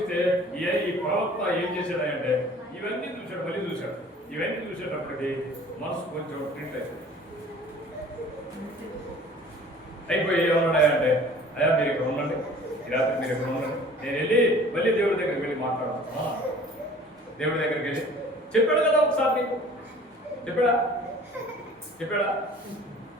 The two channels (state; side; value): normal; both; correlation 0.48